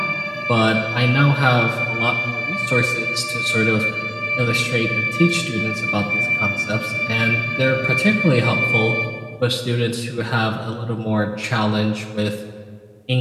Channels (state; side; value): identical; both; correlation 1.00